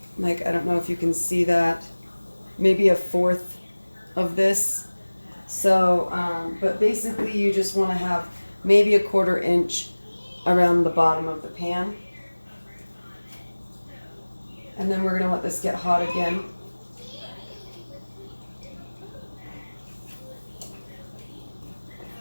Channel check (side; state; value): both; inverted; correlation -1.00